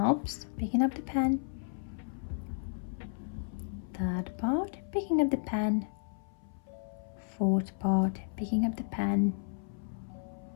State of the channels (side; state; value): right; silent; 56 dB below the other